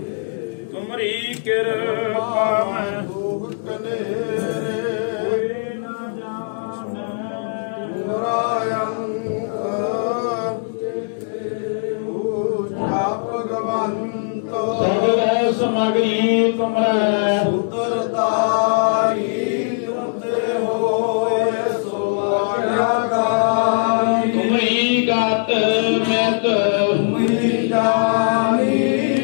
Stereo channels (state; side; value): silent; right; digital silence